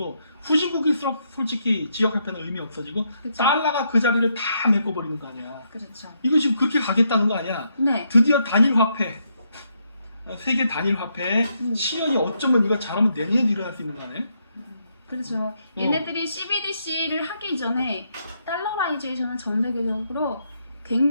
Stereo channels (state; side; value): inverted; both; correlation -0.77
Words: 후진국일수록 솔직히 지역 화폐는 의미 없어지고 그쵸. 달러가 그 자리를 다 메꿔버리는 거 아니야. 그렇죠. 이거 지금 그렇게 가겠다는 거 아니야. 네. 드디어 단일 화폐 세계 단일 화폐 시연이 어쩌면 이거 잘하면 내년에도 일어날 수 있는 거 아니야? 그렇죠. 얘네들이 CBDC를 하기 전에 달러라이제이션은 전 세계적으로